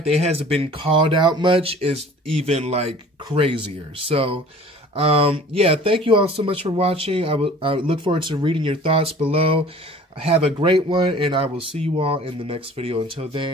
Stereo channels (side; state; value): both; normal; correlation 0.47